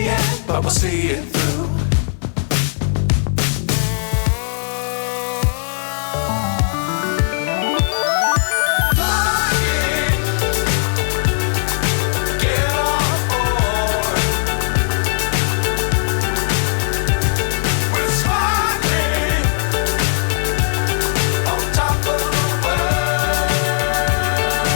end, but we'll see it through.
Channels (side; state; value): right; silent; digital silence